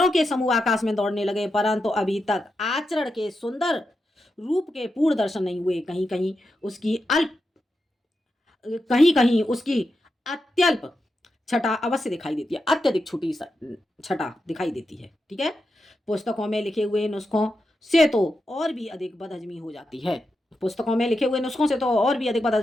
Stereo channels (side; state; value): both; normal; correlation 0.88